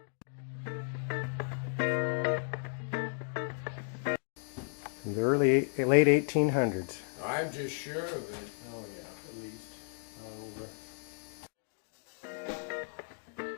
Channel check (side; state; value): right; silent; digital silence